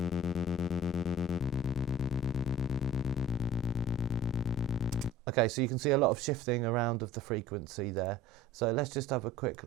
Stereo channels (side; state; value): both; normal; correlation 0.43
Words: Okay, so you can see a lot of shifting around of the frequency there. So let's just have a quick